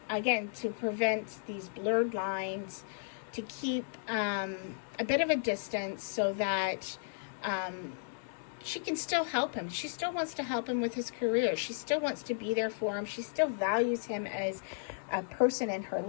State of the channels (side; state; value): right; silent; digital silence